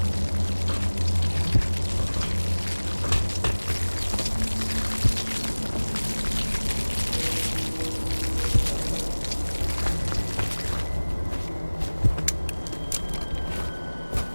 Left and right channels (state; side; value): inverted; both; correlation -1.00